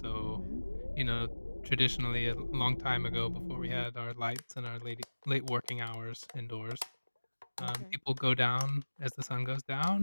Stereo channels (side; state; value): both; inverted; correlation -1.00